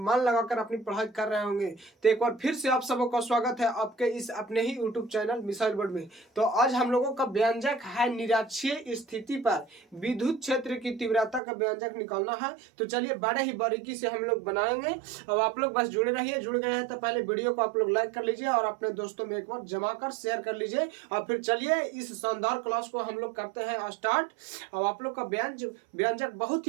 लगाकर अपनी पढ़ाई कर रहे होंगे। तो एक बार फिर से आप सबों का स्वागत है आपके इस अपने ही यूट्यूब चैनल मिसाइल वर्ड में। तो आज हम लोगों का व्यंजक है निरक्षीय स्थिति पर विद्युत क्षेत्र की तीव्रता का व्यंजक निकालना है। तो चलिए बड़े ही बारीकी से हम लोग बनाएंगे। अब आप लोग बस जुड़े रहिए। जुड़ गए हैं तो पहले वीडियो को आप लोग लाइक कर लीजिए और अपने दोस्तों में एक बार जमा कर शेयर कर लीजिए। और फिर चलिए इस शानदार क्लास को हम लोग करते हैं स्टार्ट। अब आप लोग का व्यंजक बहुत ही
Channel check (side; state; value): left; drops out; at 11.4 s